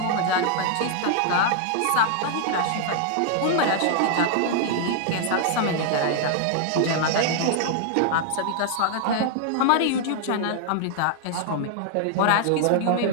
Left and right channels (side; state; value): both; different; correlation -0.01